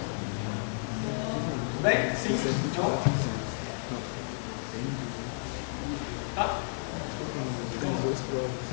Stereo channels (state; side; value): silent; right; digital silence